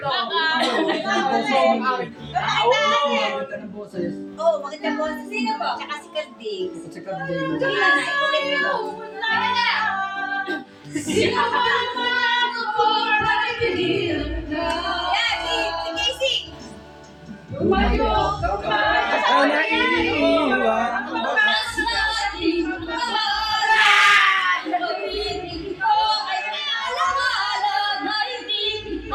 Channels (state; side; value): identical; both; correlation 1.00